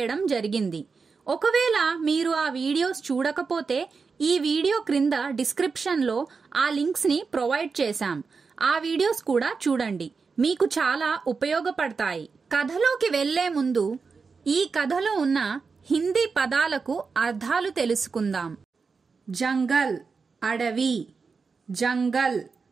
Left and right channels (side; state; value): left; quieter; 4.9 dB